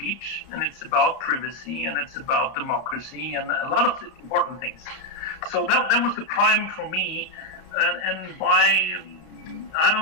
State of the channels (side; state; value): right; late; 32 ms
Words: and it's about privacy, and it's about democracy, and a lot of important things. So that was the prime for me, and by, I